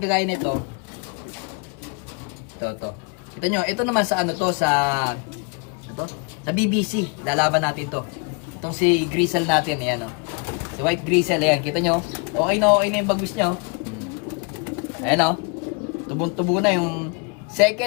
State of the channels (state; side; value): quieter; right; 33.1 dB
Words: nito. Ito. Kita nyo, ito naman sa ano to, sa BBC. Lalaban natin to. Itong si Grizzle natin, ayan o. Si White Grizzle, ayan. Kita nyo, okay na yung bagwis nyo. Ayan o. Tubong-tubo na yung